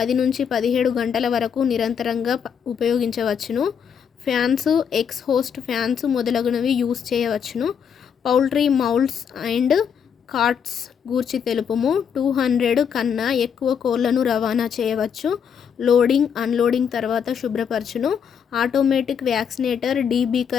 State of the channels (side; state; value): right; quieter; 7.5 dB